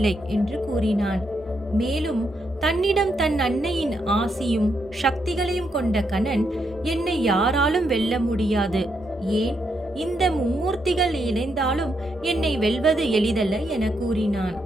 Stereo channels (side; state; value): both; normal; correlation 0.79